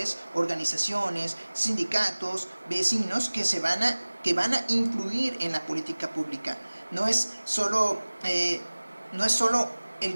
organizaciones, sindicatos, vecinos que van a influir en la política pública. No es solo el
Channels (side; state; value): both; inverted; correlation -1.00